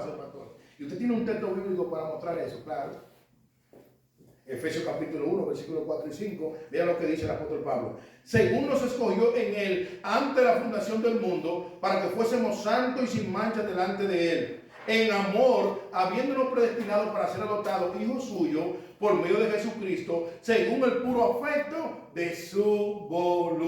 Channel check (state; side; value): identical; both; correlation 1.00